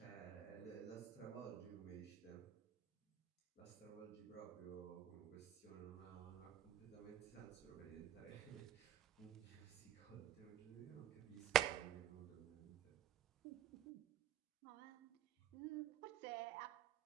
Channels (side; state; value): left; quieter; 10.6 dB